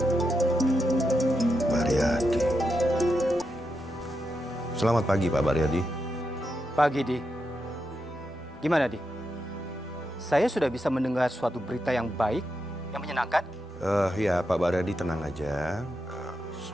Baryadi. Selamat pagi, Pak Baryadi. Pagi, Di. Gimana, Di? Saya sudah bisa mendengar suatu berita yang baik, yang menyenangkan. Ya, Pak Baryadi tenang aja.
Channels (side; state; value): both; normal; correlation 0.85